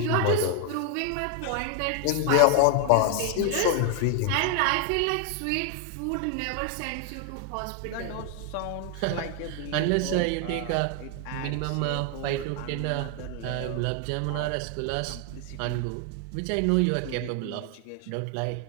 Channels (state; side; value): different; both; correlation 0.01